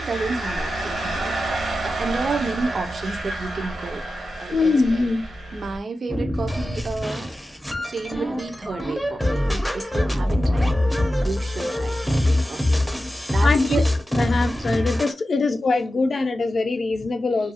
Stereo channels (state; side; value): normal; both; correlation 0.92